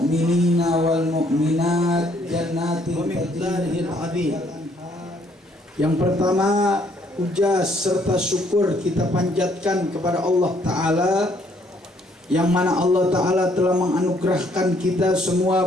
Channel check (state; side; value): normal; both; correlation 0.66